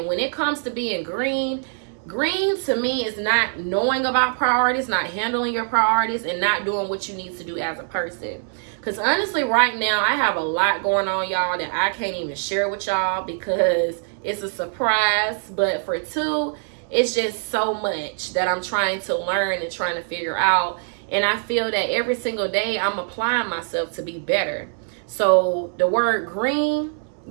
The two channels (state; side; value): silent; left; 63 dB below the other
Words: when it comes to being green, green to me is not knowing about priorities, not handling your priorities, and not doing what you need to do as a person. Because honestly, right now, I have a lot going on, y'all, that I can't even share with y'all because it's a surprise. But for two, it's just so much that I'm trying to learn and trying to figure out. And I feel that every single day I'm applying myself to be better. So the word green,